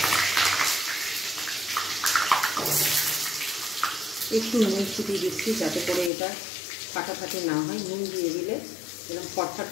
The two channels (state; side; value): drops out; right; at 6.1 s